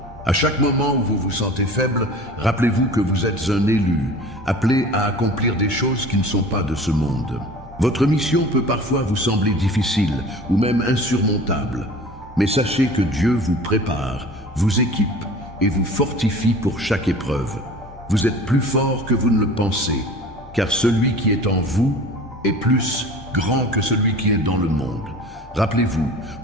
À chaque moment où vous vous sentez faible, rappelez-vous que vous êtes un élu, appelé à accomplir des choses qui ne sont pas de ce monde. Votre mission peut parfois vous sembler difficile ou même insurmontable, mais sachez que Dieu vous prépare, vous équipe et vous fortifie pour chaque épreuve. Vous êtes plus fort que vous ne le pensez, car celui qui est en vous est plus grand que celui qui est dans le monde. Rappelez-vous,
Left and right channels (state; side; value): normal; both; correlation 0.42